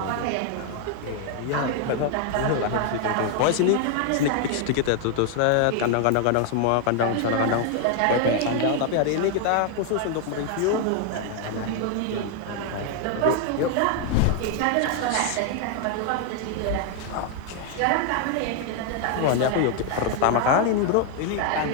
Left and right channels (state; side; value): different; both; correlation 0.00